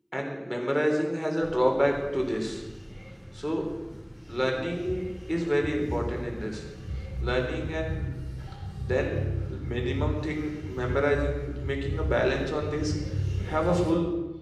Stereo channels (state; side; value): identical; both; correlation 1.00